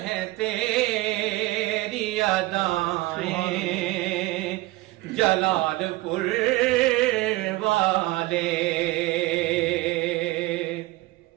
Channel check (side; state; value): left; quieter; 19.1 dB